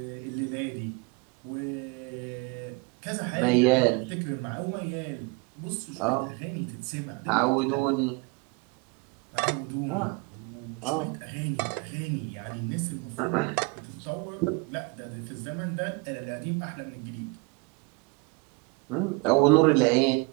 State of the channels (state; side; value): quieter; left; 27.9 dB